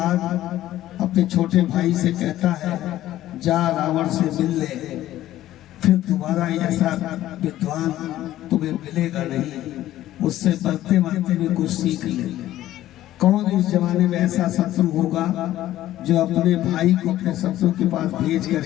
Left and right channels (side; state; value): right; quieter; 13.9 dB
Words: अपने छोटे भाई से कहता है, जा रावण से मिल ले, फिर दोबारा ऐसा विद्वान तुम्हें मिलेगा नहीं, उससे बढ़ते बढ़ते भी कुछ सीख ले। कौन इस जमाने में ऐसा शत्रु होगा जो अपने भाई को अपने शत्रु के पास भेज